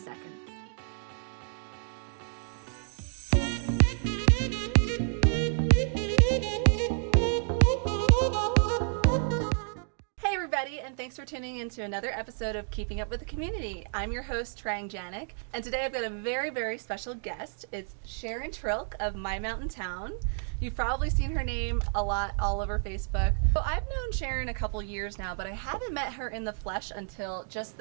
Hey everybody, and thanks for tuning in to another episode of Keeping Up with the Community. I'm your host, Trang, Janick, and today I've got a very, very special guest. It's Sharon of My Mountain Town. You've probably seen her name a lot all over Facebook. So I've known Sharon a couple years now, but I haven't met her in the flesh until just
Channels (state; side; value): silent; left; 58 dB below the other